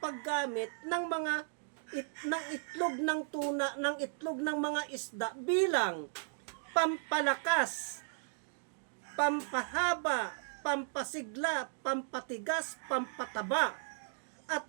paggamit ng ng itlog ng tuna, ng itlog ng mga isda bilang pampalakas, pampahaba, pampasigla, pampatigas, pampataba, at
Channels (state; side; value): silent; left; digital silence